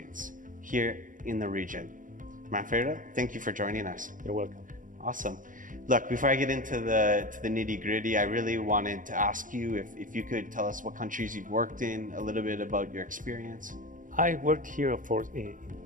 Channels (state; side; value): late; left; 0.39 ms